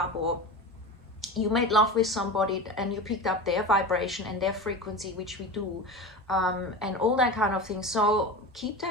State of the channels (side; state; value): both; normal; correlation 0.28